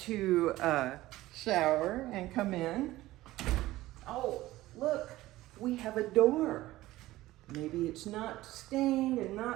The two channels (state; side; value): quieter; left; 16.9 dB